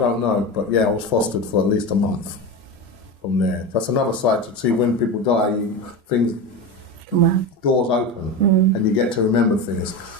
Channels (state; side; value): normal; both; correlation 0.22